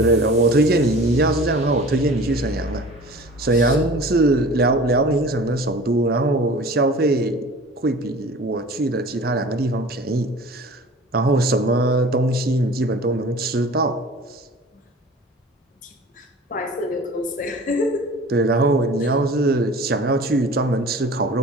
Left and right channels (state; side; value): normal; both; correlation 0.42